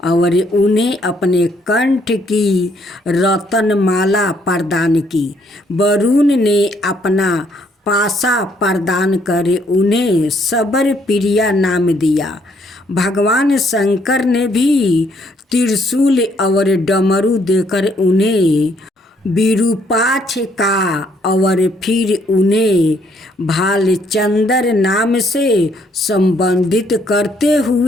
और उन्हें अपने कंठ की रत्नमाला प्रदान की। वरुण ने अपना पासा प्रदान कर उन्हें सबर प्रिया नाम दिया। भगवान शंकर ने भी त्रिशूल और डमरू देकर उन्हें विरूपाक्ष का और फिर उन्हें भालचंद्र नाम से संबंधित करते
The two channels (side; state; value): both; normal; correlation 0.68